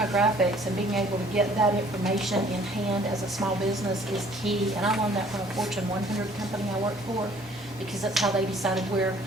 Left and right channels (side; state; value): both; normal; correlation 0.56